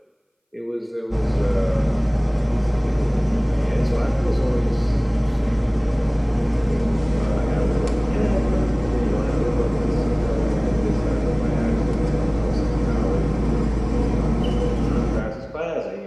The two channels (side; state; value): both; identical; correlation 1.00